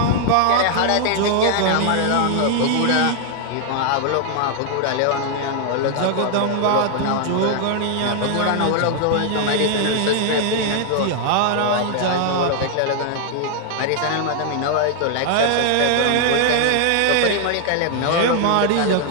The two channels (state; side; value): different; both; correlation 0.00